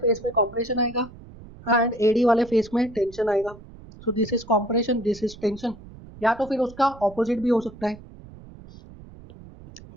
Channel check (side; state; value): right; noise; rumble, 19 dB below the sound